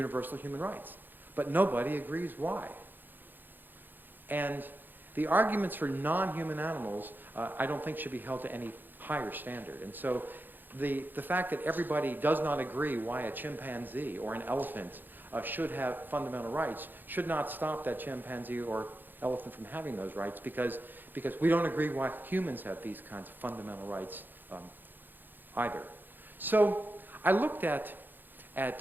human rights, but nobody agrees why. And the arguments for non-human animals, I don't think should be held to any higher standard. And so the fact that everybody does not agree why a chimpanzee or an elephant should have fundamental rights should not stop that chimpanzee or elephant from having those rights, because we don't agree why humans have these kinds of fundamental rights either. So I looked at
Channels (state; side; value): late; left; 0.091 ms